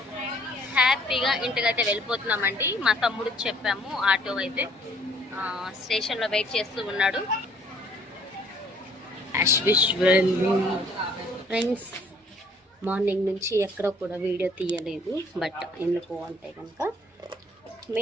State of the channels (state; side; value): normal; both; correlation 0.60